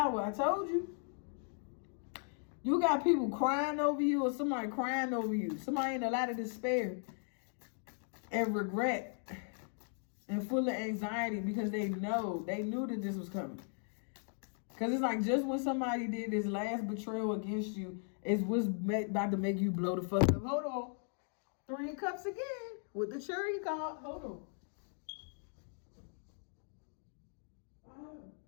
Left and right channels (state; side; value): silent; right; 53 dB below the other